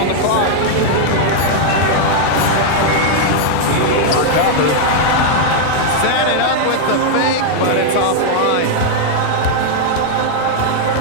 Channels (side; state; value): both; different; correlation 0.00